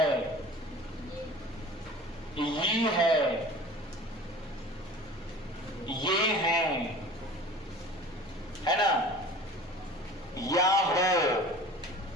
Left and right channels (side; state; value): both; normal; correlation 0.42